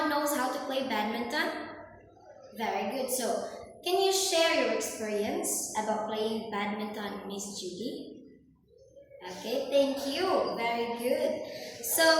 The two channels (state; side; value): identical; both; correlation 1.00